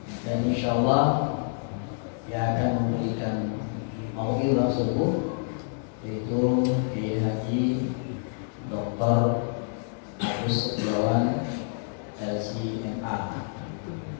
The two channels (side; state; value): right; silent; digital silence